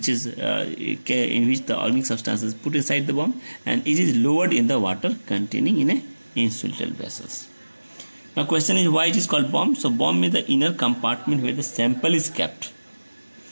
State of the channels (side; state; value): both; inverted; correlation -1.00